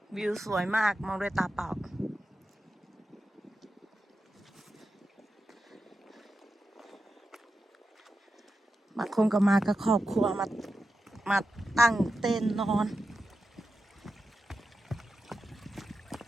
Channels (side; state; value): both; normal; correlation 0.90